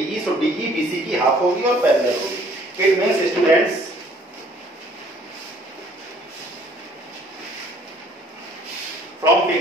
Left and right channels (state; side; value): normal; both; correlation 0.58